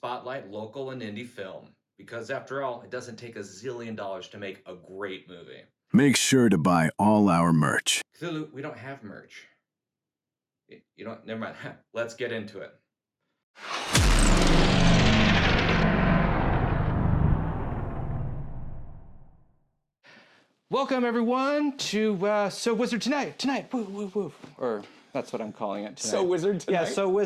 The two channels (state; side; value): identical; both; correlation 1.00